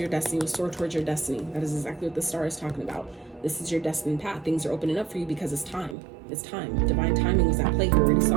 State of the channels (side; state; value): left; drops out; at 6.0 s